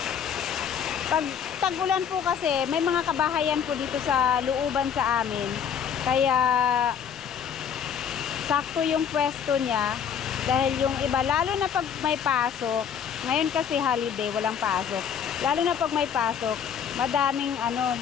Pag tag-ulan po kasi, may mga kabahayan po dito sa looban sa amin. Kaya sakto yung pwesto niya. Dahil yung iba, lalo na pag may pasok, ngayon kasi holiday, walang pasok. Lalo na pag may pasok,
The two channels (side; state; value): right; quieter; 7.8 dB